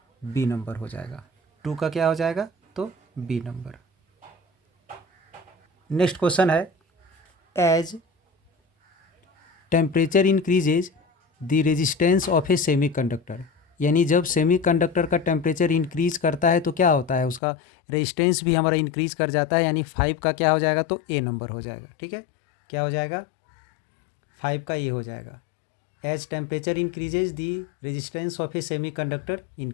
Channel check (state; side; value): drops out; right; at 17.4 s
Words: बी नंबर हो जाएगा। 2 का क्या हो जाएगा, तो बी नंबर। नेक्स्ट क्वेश्चन है, as temperature increases the resistance of a semiconductor. यानी जब सेमीकंडक्टर का टेम्परेचर इंक्रीज करता है तो क्या होता है, उसका रेजिस्टेंस भी हमारा इंक्रीज कर जाता है। यानी 5 का क्या हो जाएगा, तो ए नंबर हो जाएगा। ठीक है, क्या हो जाएगा, 5 का ए हो जाएगा। As temperature increases the resistance of a semiconductor